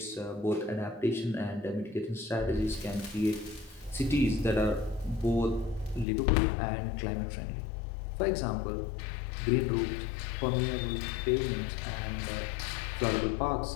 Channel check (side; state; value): right; drops out; at 6.1 s